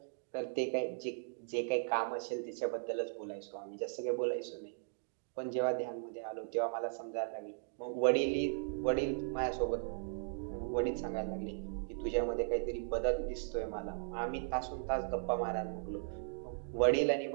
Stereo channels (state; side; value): silent; left; digital silence